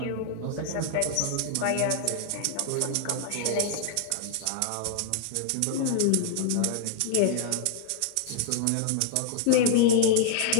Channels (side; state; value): both; different; correlation 0.00